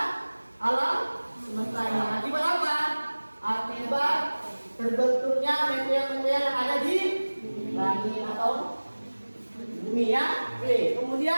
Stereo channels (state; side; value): inverted; both; correlation -1.00